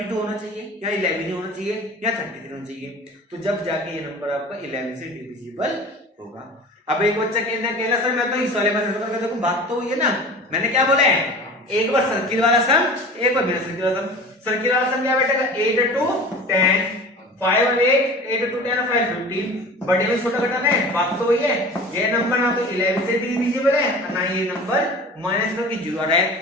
होना चाहिए, या 11 होना चाहिए, या 33 होना चाहिए। तो जब जाके ये नंबर आपका 11 से डिविजिबल होगा। अब एक बच्चा कहना सर मैं तो इस वाले में, देखो बात तो हुई है ना, मैंने क्या बोला है? एक बार सर्किल वाला सम, एक बार बिना सर्किल वाला सम। सर्किल वाला सम क्या बैठेगा? 8 और 2, 10, 5 और 8, 8 to 10 5 15, बड़े में छोटा घटाना है, बात तो वही है। ये नंबर ना तो 11 से डिविजिबल है और ना ये नंबर माइनस में 0 आ रहा है,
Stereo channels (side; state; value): both; normal; correlation 0.39